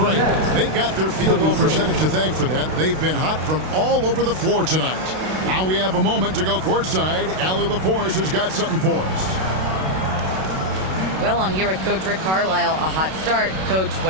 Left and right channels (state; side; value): late; left; 32 ms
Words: They've got their field goal percentage to thank for that. They've been hot from all over the floor tonight. Now we have a moment to go courtside. Allie LaForce has got something for us. Well, I'm here with Coach Rick Carlisle. A hot start. Coach,